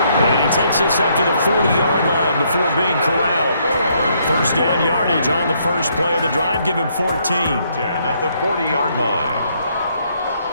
he takes this up to the 40-yard line before being corralled. 1st down yardage on the first play of the drive. Give him 14. 10 at the 40-yard line.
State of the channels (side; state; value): both; inverted; correlation -0.71